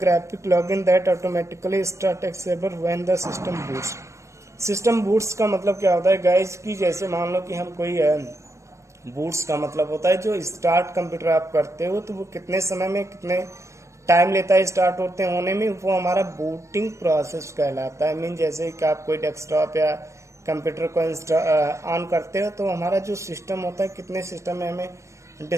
graphic login that automatically start X server when the system boots. System boots का मतलब क्या होता है गाइस कि जैसे मान लो कि हम कोई बूट्स का मतलब होता है जो स्टार्ट कंप्यूटर आप करते हो तो वो कितने समय में कितने टाइम लेता है स्टार्ट होते होने में, वो हमारा बूटिंग प्रोसेस कहलाता है। मीन जैसे कि आप कोई डेस्कटॉप या कंप्यूटर को ऑन करते हो तो हमारा जो सिस्टम होता है कितने सिस्टम में हमें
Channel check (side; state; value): left; late; 0.14 ms